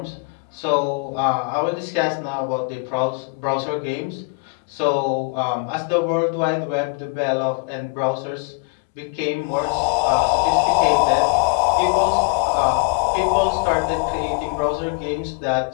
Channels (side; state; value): right; quieter; 34.7 dB